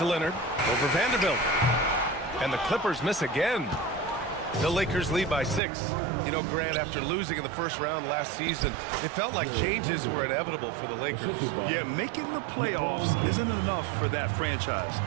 Leonard. Over Vanderbilt. And the Clippers miss again. The Lakers lead by 6. You know, Grant, after losing in the first round last season, it felt like changes were inevitable for the Lakers. Yeah, making the playoffs isn't enough for that franchise.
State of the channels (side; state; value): left; drops out; at 5.6 s